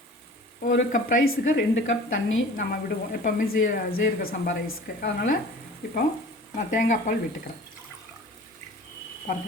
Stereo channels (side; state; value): both; normal; correlation 0.43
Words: 1 கப் ரைஸுக்கு 2 கப் தண்ணி நம்ம விடுவோம் எப்போவுமே ஜீரக சம்பா ரைஸுக்கு. அதனால் இப்போ நான் தேங்காய் பால் விட்டுக்கிறேன்.